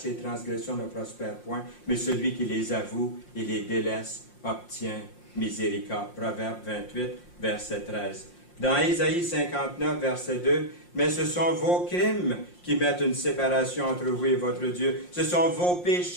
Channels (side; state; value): right; late; 5.7 ms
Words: transgressions ne prospère point, mais celui qui les avoue et les délaisse obtient miséricorde. Proverbe 28, verset 13. Dans Ésaïe 59, verset 2, « Mais ce sont vos crimes qui mettent une séparation entre vous et votre Dieu. Ce sont vos